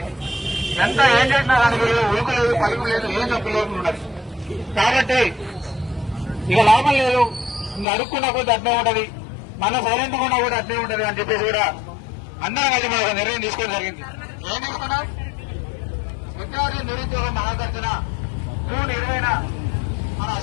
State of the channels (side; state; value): right; drops out; at 7.9 s